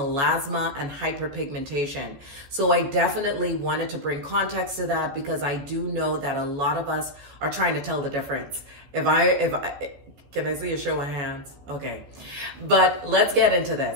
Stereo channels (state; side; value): late; left; 14 ms